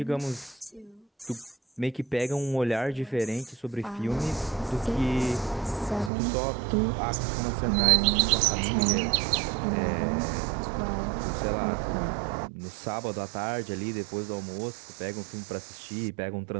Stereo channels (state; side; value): drops out; left; at 6.1 s